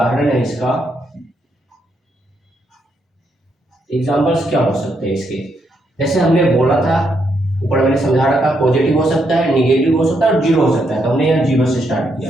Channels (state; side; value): normal; both; correlation 0.78